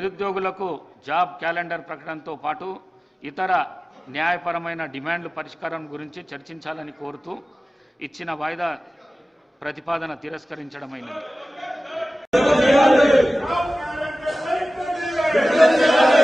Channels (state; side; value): normal; both; correlation 0.97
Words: జాబ్ క్యాలెండర్ ప్రకటనతో పాటు ఇతర న్యాయపరమైన డిమాండ్ల పరిష్కారం గురించి చర్చించాలని కోరుతూ ఇచ్చిన వాయిదా ప్రతిపాదన తిరస్కరించడమైనది.